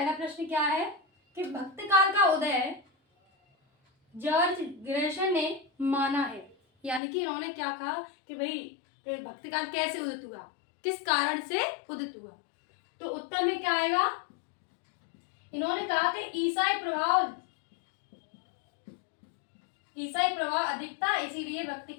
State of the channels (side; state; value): right; drops out; at 7.0 s